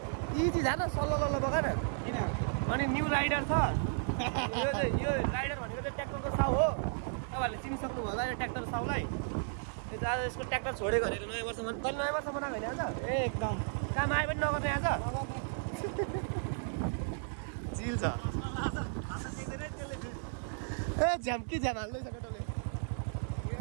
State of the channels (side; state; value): left; silent; digital silence